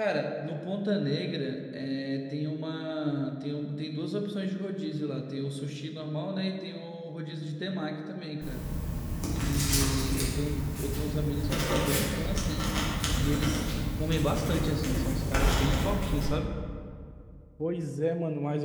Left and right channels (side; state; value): both; identical; correlation 1.00